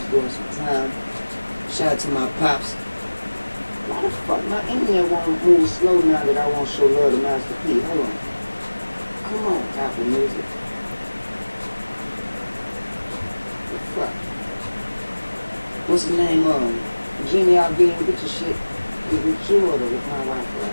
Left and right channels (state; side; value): inverted; both; correlation -1.00